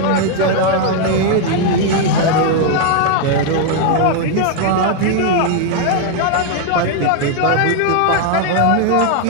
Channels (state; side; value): different; both; correlation 0.00